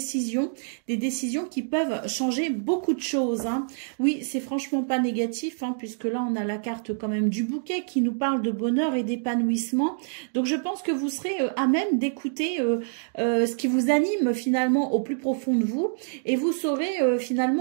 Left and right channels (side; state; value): left; silent; digital silence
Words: des décisions qui peuvent changer beaucoup de choses. Oui, c'est franchement pas négatif, puisque là on a la carte quand même du bouquet qui nous parle de bonheur et d'épanouissement. Donc je pense que vous serez à même d'écouter ce qui vous anime finalement au plus profond de vous, et vous saurez